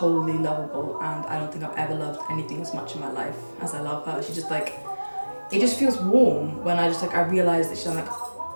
lovable, and I don't think I've ever loved anything as much in my life as I love her. She just like, it just feels warm when I realize that she's like,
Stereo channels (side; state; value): both; inverted; correlation -1.00